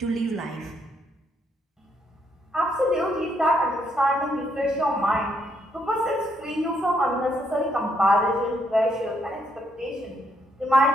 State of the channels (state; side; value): normal; both; correlation 0.74